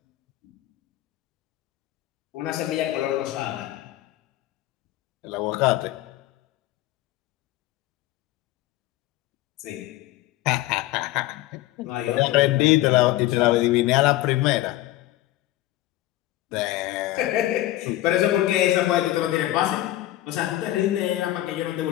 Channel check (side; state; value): right; quieter; 15.6 dB